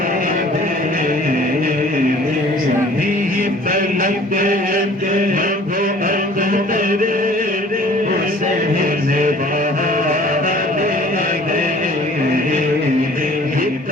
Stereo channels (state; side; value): normal; both; correlation 0.51